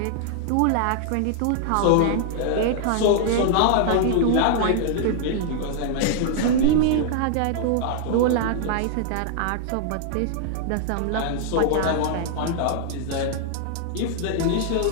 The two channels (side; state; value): both; different; correlation -0.01